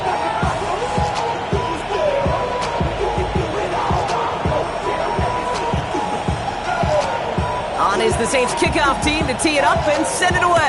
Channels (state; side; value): identical; both; correlation 1.00